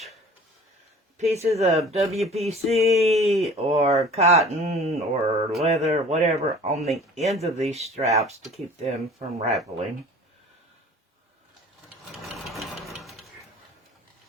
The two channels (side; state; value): both; normal; correlation 0.45